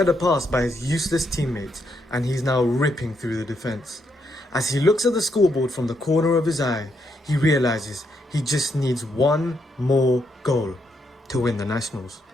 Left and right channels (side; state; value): both; normal; correlation 0.78